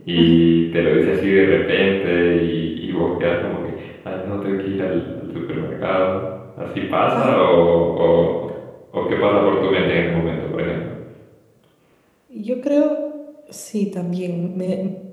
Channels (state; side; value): identical; both; correlation 1.00